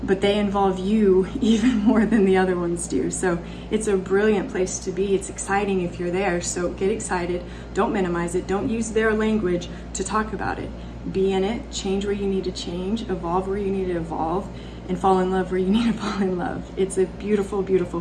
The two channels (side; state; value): both; identical; correlation 1.00